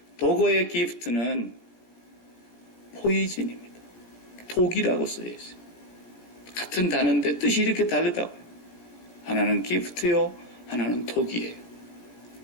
독어의 기프트는 포이즌입니다. 독이라고 써져 있어요. 같은 단어인데 뜻이 이렇게 다르다고요. 하나는 기프트요, 하나는 독이에요.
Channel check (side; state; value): right; late; 17 ms